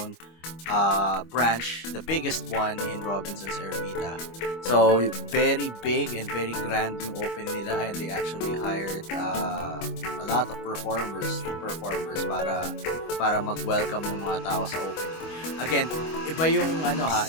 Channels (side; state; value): right; late; 25 ms